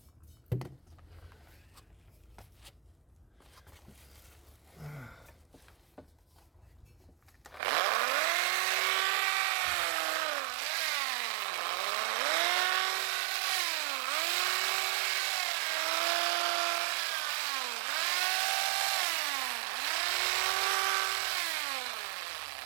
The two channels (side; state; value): left; drops out; at 7.6 s